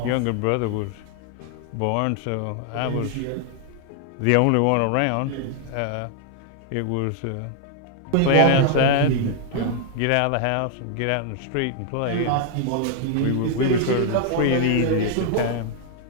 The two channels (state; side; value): different; both; correlation 0.00